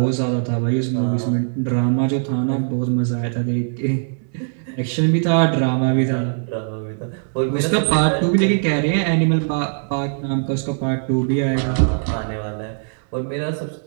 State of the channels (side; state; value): left; silent; 65 dB below the other